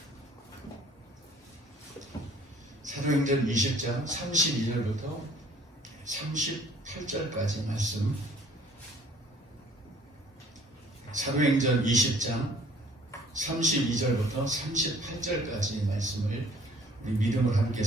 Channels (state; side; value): normal; both; correlation 0.56